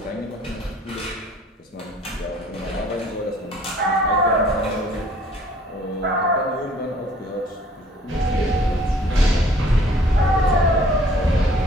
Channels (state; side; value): normal; both; correlation 0.56